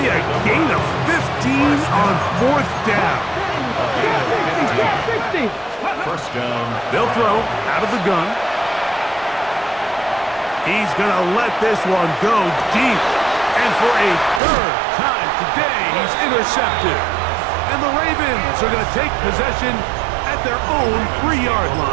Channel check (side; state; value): left; drops out; at 14.4 s